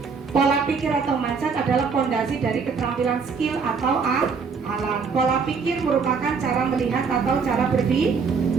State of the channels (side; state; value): left; quieter; 5.4 dB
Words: Pola pikir atau mindset adalah fondasi dari keterampilan skill atau alat. Pola pikir merupakan cara melihat atau cara